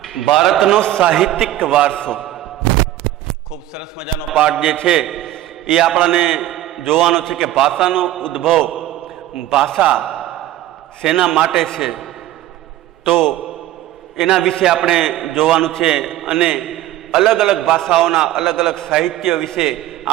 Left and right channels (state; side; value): quieter; left; 14.1 dB